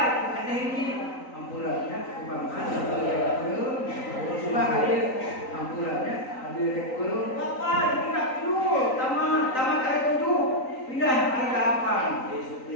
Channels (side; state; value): right; late; 3.9 ms